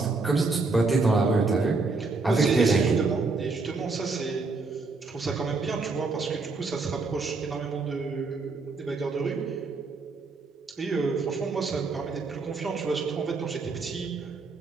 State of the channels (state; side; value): quieter; left; 3.9 dB